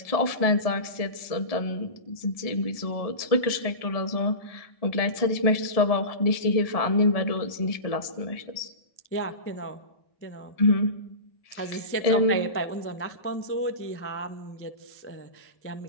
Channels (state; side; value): late; right; 1.7 ms